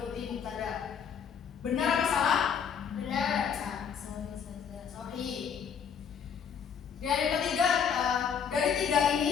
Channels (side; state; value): right; quieter; 7.2 dB